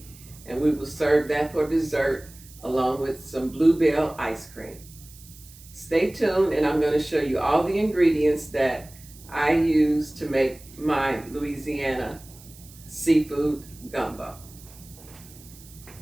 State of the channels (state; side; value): noise; right; hiss, 21 dB below the sound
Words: and we will serve that for dessert along with some bluebell ice cream. Stay tuned and I'm going to show you all the ingredients that I use to make my Louisiana seafood gumbo.